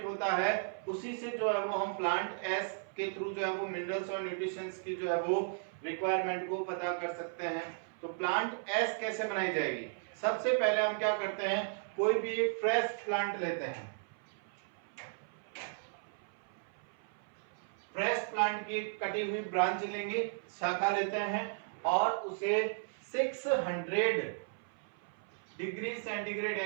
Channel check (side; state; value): left; silent; 54 dB below the other